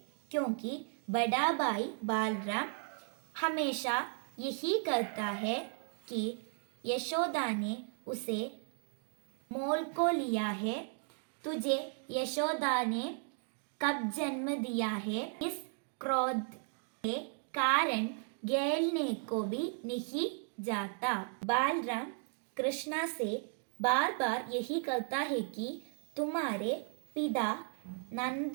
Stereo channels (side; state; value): left; silent; 54 dB below the other